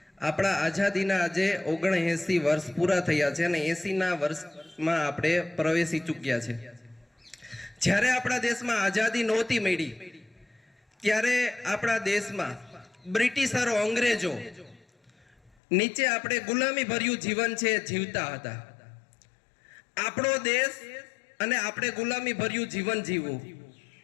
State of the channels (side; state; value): right; drops out; at 15.5 s